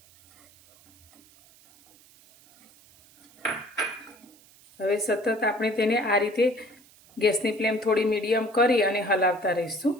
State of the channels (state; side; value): noise; right; hiss, 27 dB below the sound